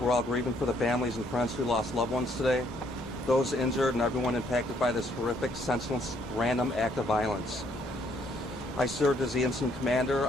all grieving for the families and friends who lost loved ones today, those injured and everyone impacted by this horrific, senseless, random act of violence. I served as the incident commander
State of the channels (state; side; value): normal; both; correlation 0.68